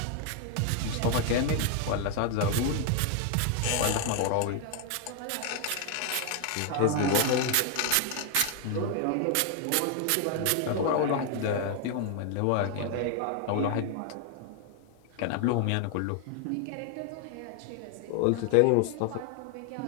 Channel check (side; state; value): both; different; correlation 0.00